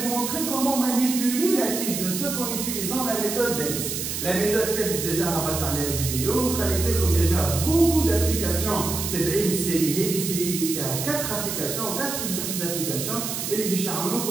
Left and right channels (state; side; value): noise; right; hiss, 4 dB below the sound